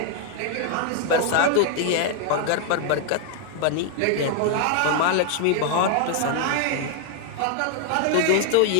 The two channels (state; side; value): different; both; correlation 0.00